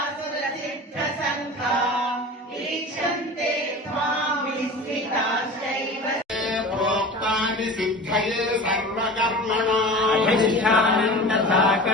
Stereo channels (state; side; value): normal; both; correlation 0.35